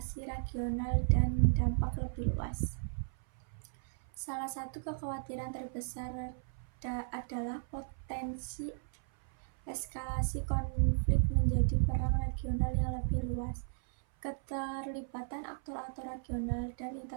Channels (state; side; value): silent; left; 54 dB below the other